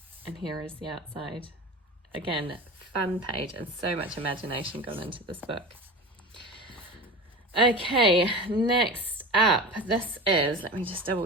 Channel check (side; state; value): both; normal; correlation 0.32